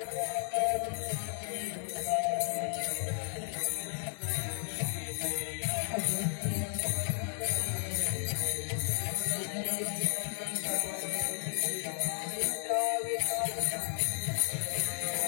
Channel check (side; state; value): right; silent; 55 dB below the other